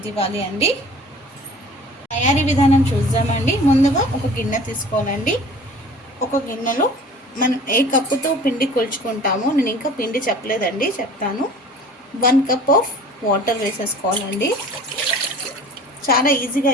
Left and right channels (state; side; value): normal; both; correlation 0.45